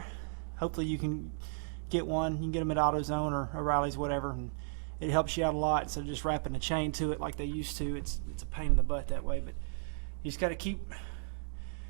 Hopefully you can get one. You can get them at AutoZone or O'Reilly's, whatever, and it helps you out a lot instead of just wrapping a chain to it like they used to. It's a pain in the butt that way, but you just got to keep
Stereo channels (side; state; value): left; silent; digital silence